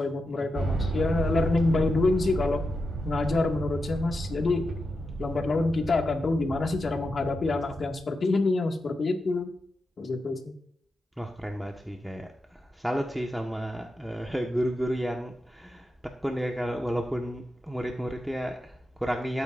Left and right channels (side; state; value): both; normal; correlation 0.88